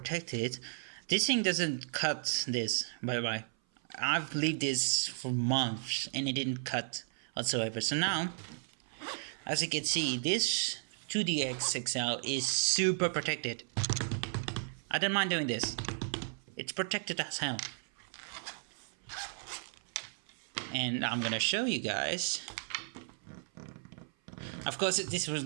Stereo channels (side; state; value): left; silent; 55 dB below the other